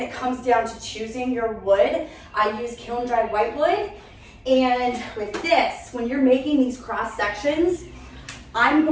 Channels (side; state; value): both; identical; correlation 1.00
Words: it comes down to choosing your wood. I use kiln-dried whitewood, and with this, when you're making these cross sections, I'm